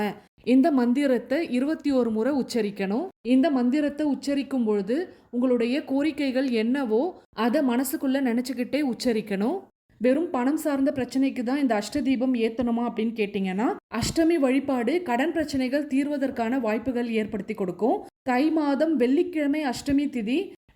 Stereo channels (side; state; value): both; identical; correlation 1.00